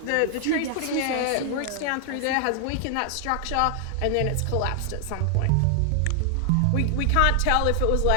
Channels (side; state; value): both; different; correlation 0.00